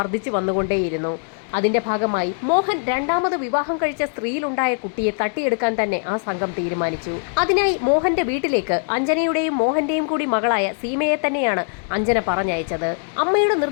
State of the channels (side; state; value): right; silent; 65 dB below the other